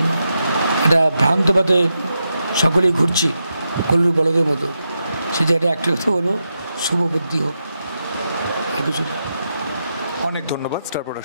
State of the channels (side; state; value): both; inverted; correlation -0.86